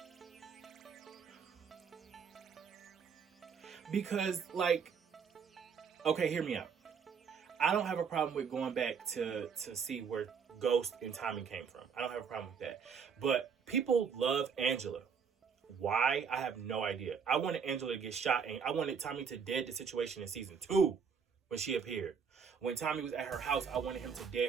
because like, okay, hear me out. I don't have a problem with going back to see where Ghost and Tommy came from. I don't have a problem with that. But people love Angela. Why? I have no idea. I wanted Angela to get shot, and I wanted Tommy to dead the situation in season 2 when she appeared. When Tommy was at her house, I wanted him to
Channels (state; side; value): quieter; left; 6.4 dB